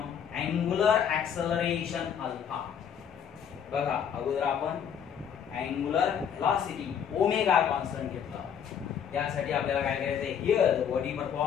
angular acceleration alpha. बघा, अगोदर आपण angular velocity omega constant घेतला. त्यासाठी आपल्याला काय करायचं आहे, here the body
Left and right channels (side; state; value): right; quieter; 8.1 dB